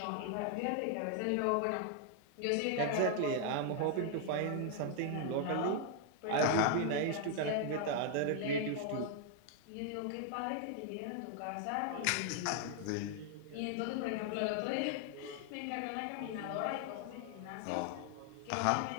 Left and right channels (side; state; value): both; different; correlation 0.00